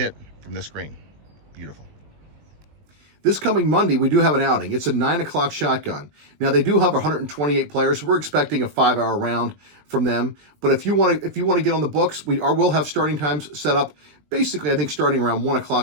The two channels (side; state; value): left; late; 20 ms